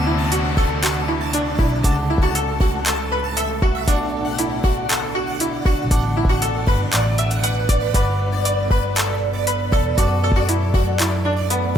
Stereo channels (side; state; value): both; normal; correlation 0.75